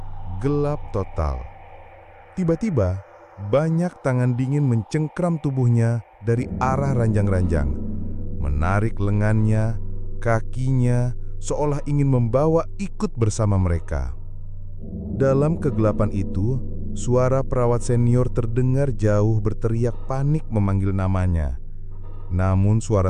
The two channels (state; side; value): identical; both; correlation 1.00